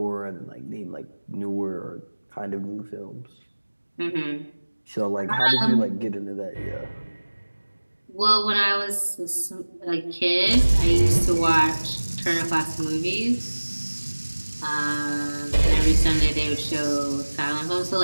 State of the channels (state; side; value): inverted; both; correlation -1.00